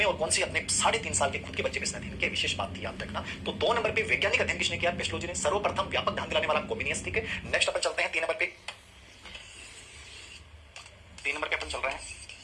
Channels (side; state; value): both; identical; correlation 1.00